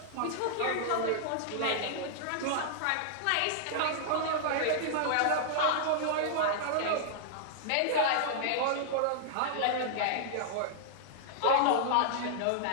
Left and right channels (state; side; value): different; both; correlation -0.01